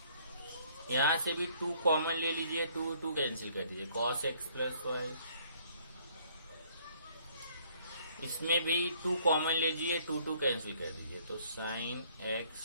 यहाँ से भी 2 कॉमन ले लीजिए, 2 कैंसिल कर दीजिए, कॉस x प्लस y। इसमें भी 2 कॉमन लीजिए, 2 कैंसिल कर दीजिए, तो साइन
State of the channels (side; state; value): both; inverted; correlation -0.62